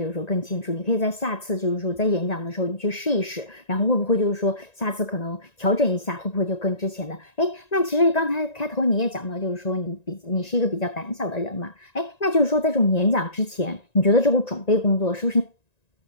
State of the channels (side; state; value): right; late; 1.9 ms